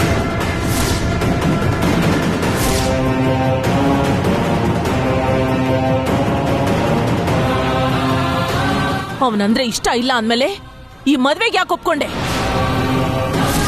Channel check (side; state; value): both; identical; correlation 1.00